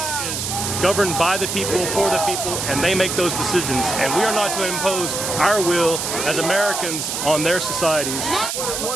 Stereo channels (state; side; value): noise; right; hiss, 3 dB below the sound